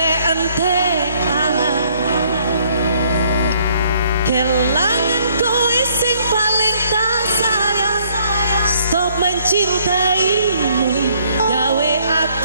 kelangan kowe sing paling tak sayang. Stop mencintaimu, gawe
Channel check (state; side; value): inverted; both; correlation -0.65